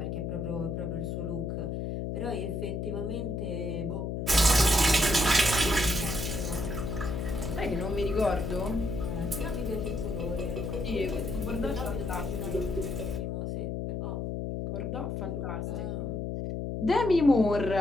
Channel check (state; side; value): noise; left; hum, 3 dB below the sound